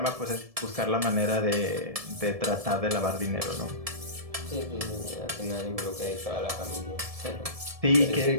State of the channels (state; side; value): late; left; 1.7 ms